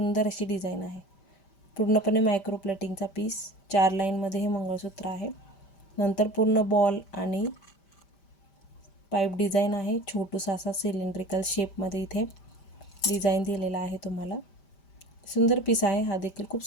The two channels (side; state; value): right; late; 5.1 ms